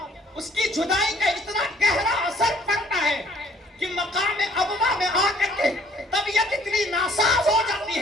اس کی جدائی کا اتنا گہرا اثر پڑتا ہے کہ مقام ابوا میں آ کر کے طبیعت اتنی ناساز ہو جاتی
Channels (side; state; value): both; normal; correlation 0.60